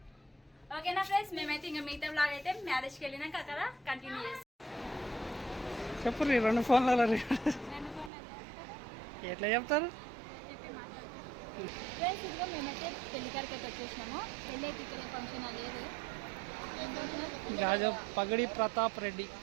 ఓకేనా ఫ్రెండ్స్, మేమైతే ఇంకా మిగతా బ్లాగ్ అయితే మ్యారేజ్కి వెళ్ళినాక అక్కడ కంటిన్యూ చేస్తాం. చెప్పు రీ, 2 ఫోన్లలో ఎట్లా చెప్తారు? ఫ్రెండ్స్, ఇదిగో మేమైతే పెళ్లికారికి అయితే వచ్చేసినాము. పెళ్ళి అయితే ఇక్కడ ఫంక్షన్ లేదు. రాజా పగడి ప్రతాప్ రెడ్డి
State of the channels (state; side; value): drops out; left; at 8.1 s